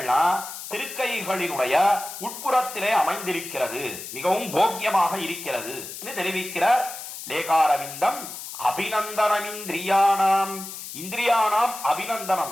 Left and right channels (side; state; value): left; noise; hiss, 10 dB below the sound